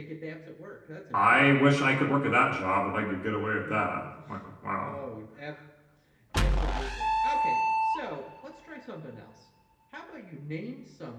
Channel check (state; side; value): identical; both; correlation 1.00